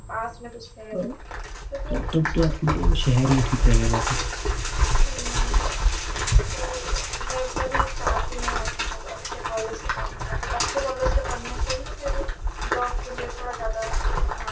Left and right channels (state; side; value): identical; both; correlation 1.00